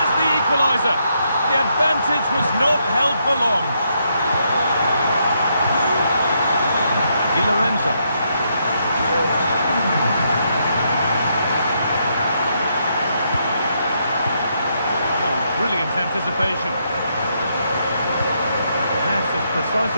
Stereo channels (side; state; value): both; inverted; correlation -0.77